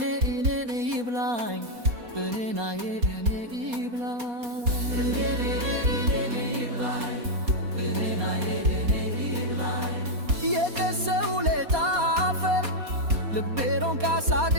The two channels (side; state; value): left; late; 4.2 ms